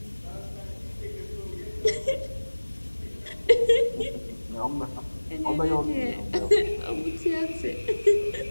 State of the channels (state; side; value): inverted; both; correlation -1.00